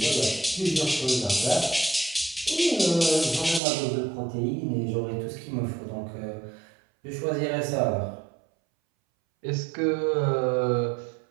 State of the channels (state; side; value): drops out; left; at 3.6 s